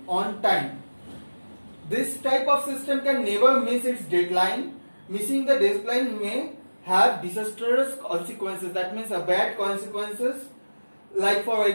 on time. This type of system can never miss its deadline. Missing the deadline may have disastrous consequences, that means a bad consequences, like for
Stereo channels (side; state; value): both; inverted; correlation -1.00